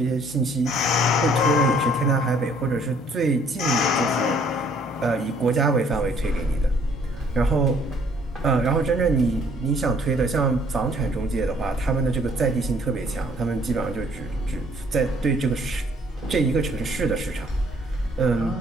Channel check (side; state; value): both; normal; correlation 0.61